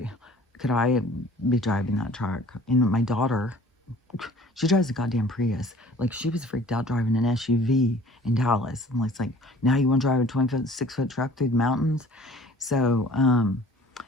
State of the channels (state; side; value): normal; both; correlation 0.50